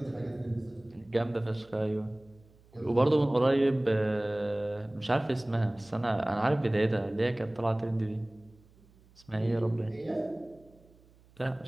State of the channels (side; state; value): right; noise; hum, 28 dB below the sound